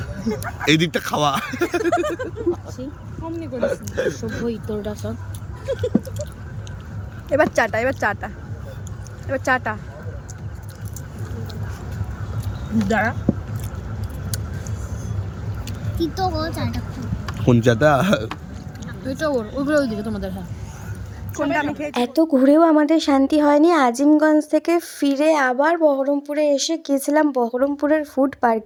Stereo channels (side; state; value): both; identical; correlation 1.00